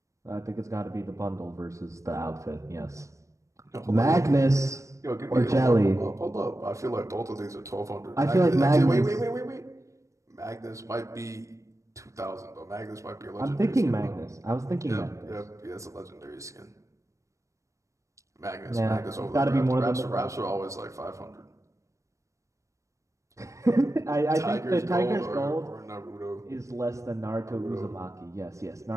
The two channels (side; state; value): left; late; 0.15 ms